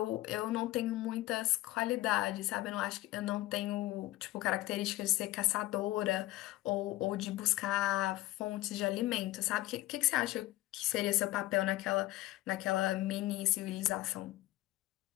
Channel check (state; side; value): quieter; right; 17.4 dB